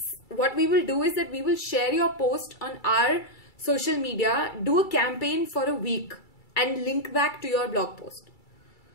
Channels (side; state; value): right; late; 2.3 ms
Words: what we will do is that we will share your post on our social media, do a campaign for a week and link back to your blog post.